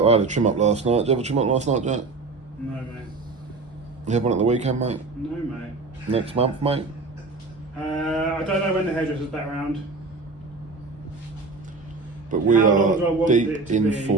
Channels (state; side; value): quieter; left; 3.8 dB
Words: I had a trim up last night. Did you have a trim up last night, Jack? No, mate. You have one at the weekend, mate? No, mate. Next month, mate? I don't know when the hairdresser's back round. But we How long do I are want it deep to in be?